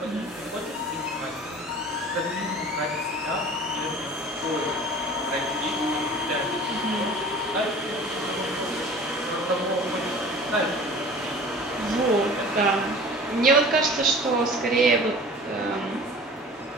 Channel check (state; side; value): normal; both; correlation 0.43